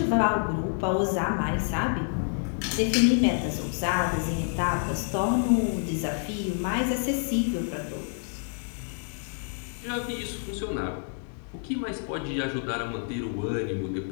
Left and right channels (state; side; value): silent; right; 59 dB below the other